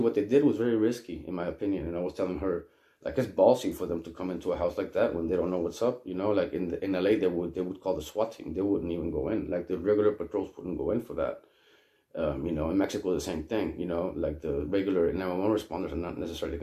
they did was very risky, in my opinion. And I was telling her, it's ballsy for them to come into a house like that when they don't know what's up. In LA, they would call the SWAT team. They wouldn't even go in. The regular patrols wouldn't go in for that. In Mexico, the same thing. The regular 911 responders are not necessarily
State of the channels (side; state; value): both; identical; correlation 1.00